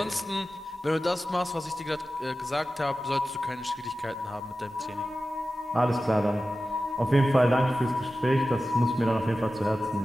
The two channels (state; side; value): normal; both; correlation 0.94